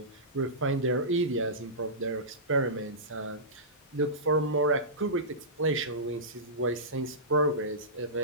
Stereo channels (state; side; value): normal; both; correlation -0.19